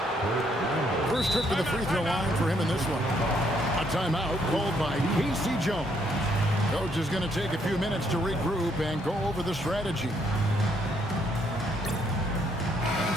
First trip to the free throw line for him in this one. A timeout called by Casey Jones. Coach is going to take a few minutes to regroup and go over the strategy. And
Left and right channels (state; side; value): normal; both; correlation 0.71